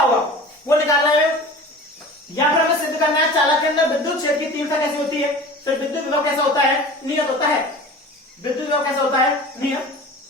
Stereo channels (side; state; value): both; normal; correlation 0.38